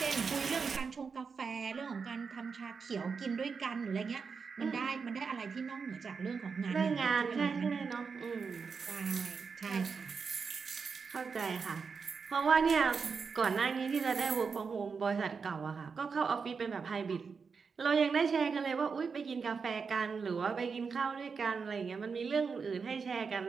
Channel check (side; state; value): left; quieter; 5.4 dB